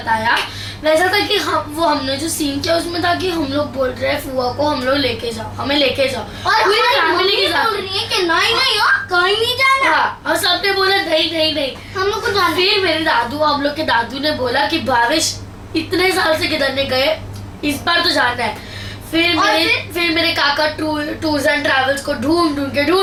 वैसा था कि हमने जो सीन किया उसमें था कि हम लोग बोल रहे हैं फुआ को हम लोग लेके जाओ, हमें लेके जाओ, और पूरी फैमिली के साथ बोल रही है कि नहीं हो, कहीं नहीं जाना। हाँ, और सबने बोला नहीं हम लोग को जाना। फिर मेरे दादू, हम लोग के दादू ने बोला कि भावेश इतने साल से किधर नहीं गए, इस बार तो जाना है। फिर मेरे काका टूर्स एंड ट्रैवल्स को ढूंढ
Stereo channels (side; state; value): both; identical; correlation 1.00